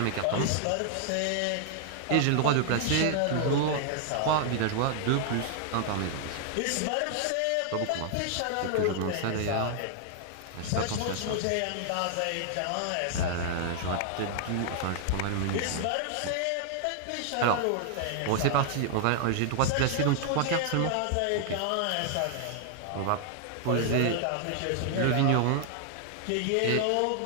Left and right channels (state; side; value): different; both; correlation -0.01